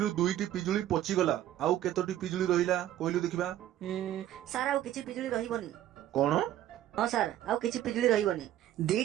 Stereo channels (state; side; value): quieter; left; 12.5 dB